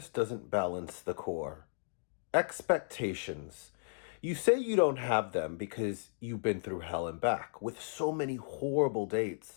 doesn't balance the core. Expectations. You say you don't have them because you've been through hell and back with so many horrible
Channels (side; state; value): right; silent; digital silence